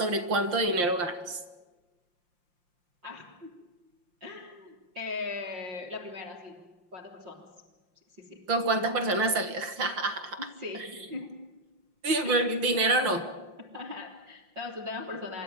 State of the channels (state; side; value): late; left; 5.7 ms